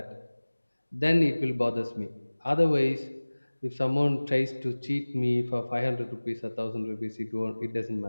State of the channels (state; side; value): inverted; both; correlation -1.00